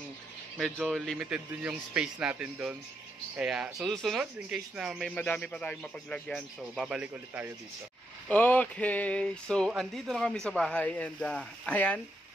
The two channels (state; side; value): normal; both; correlation 0.81